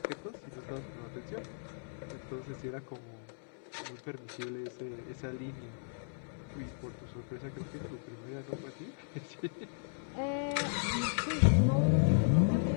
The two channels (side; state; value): right; silent; digital silence